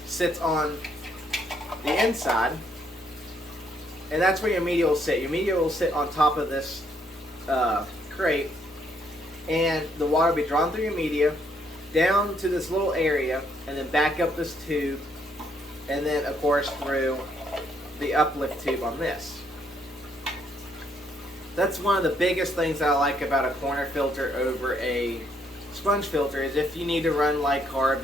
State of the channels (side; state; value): both; normal; correlation 0.71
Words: sits on the inside, and that's where your media will sit. Your media will sit on top of this crate, and the water will be drawn through your media down to this little area, and then back up this tube, and then of course through the uplift tube on this. That's one of the biggest things that I like about a corner filter over a sponge filter, is if you need to run like